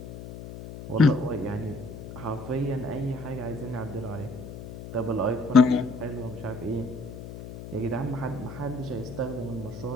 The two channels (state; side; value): noise; left; hum, 12 dB below the sound